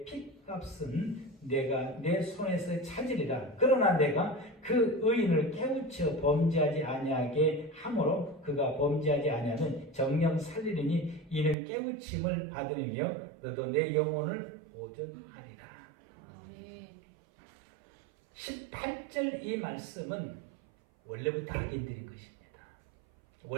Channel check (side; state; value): left; drops out; at 11.6 s